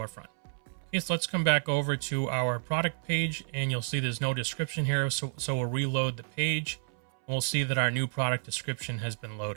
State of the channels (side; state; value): left; silent; 58 dB below the other